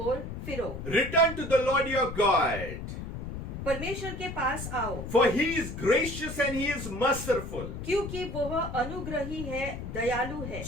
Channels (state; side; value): noise; left; rumble, 7 dB below the sound